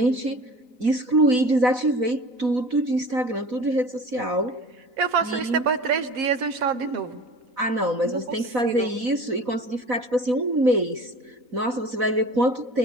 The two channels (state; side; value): late; left; 4.0 ms